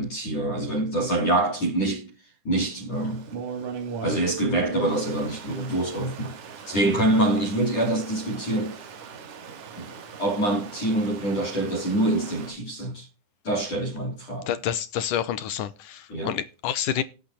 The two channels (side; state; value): right; late; 9.8 ms